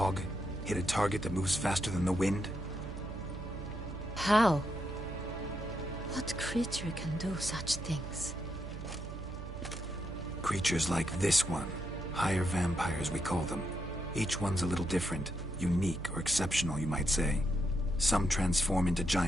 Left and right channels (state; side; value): noise; right; hum, 9 dB below the sound